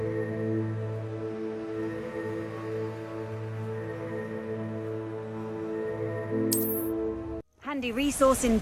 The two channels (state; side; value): identical; both; correlation 1.00